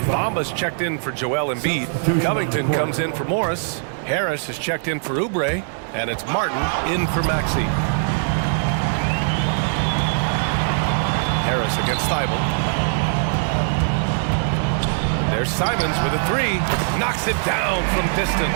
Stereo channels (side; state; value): left; silent; digital silence